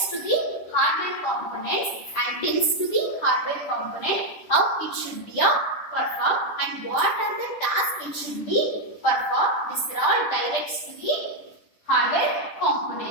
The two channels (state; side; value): late; right; 10 ms